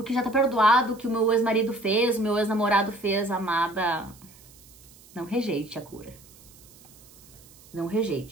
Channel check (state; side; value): noise; right; hiss, 24 dB below the sound